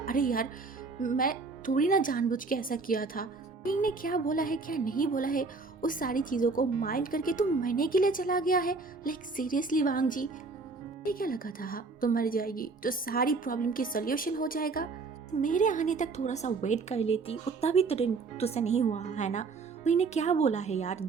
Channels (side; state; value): left; quieter; 4.1 dB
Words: यार मैं थोड़ी ना जानबूझ के ऐसा किया था। विंग ने क्या बोला है क्या नहीं बोला है, उस सारी चीज़ों को माइंड करके तुम मरने के लिए चला गया है। सीरियसली बांगजी, ये क्या लगा था? हाँ तो मर जाएगी तो सारी प्रॉब्लम की सोल्यूशन हो जाएगा। मेरे आने तक थोड़ा सा वेट कर लेती, उतना भी तुझसे नहीं हुआ है ना। विंग ने क्या बोला है यार,